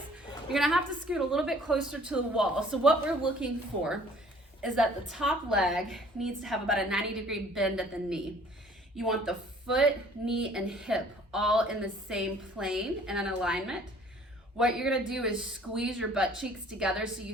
you're gonna have to scoot a little bit closer to the wall. So what we're looking for is that the top leg needs to have about a 90-degree bend at the knee. You want the foot, knee, and hip all in the same plane and in alignment. What you're gonna do is squeeze your butt cheeks together so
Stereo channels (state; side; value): normal; both; correlation 0.55